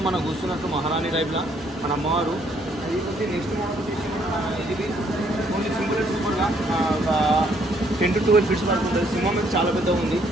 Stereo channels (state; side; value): normal; both; correlation 0.68